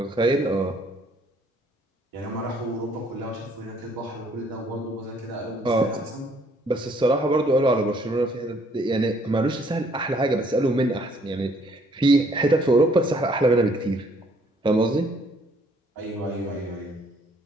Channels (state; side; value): normal; both; correlation 0.63